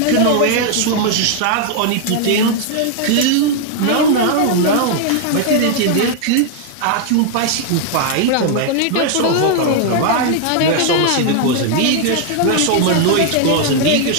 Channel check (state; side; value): different; both; correlation 0.00